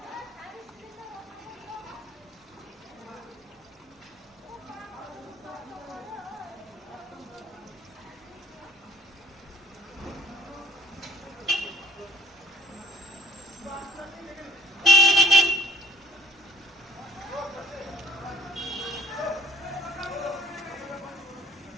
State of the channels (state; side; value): normal; both; correlation 0.58